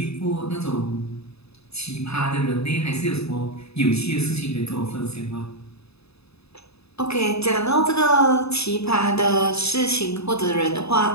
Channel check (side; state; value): right; late; 0.79 ms